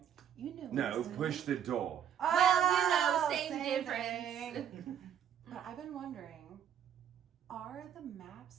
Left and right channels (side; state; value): left; quieter; 9.1 dB